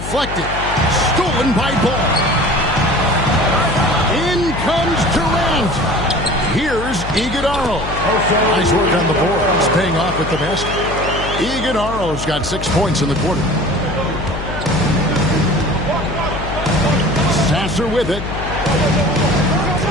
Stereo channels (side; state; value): left; noise; hum, 8 dB below the sound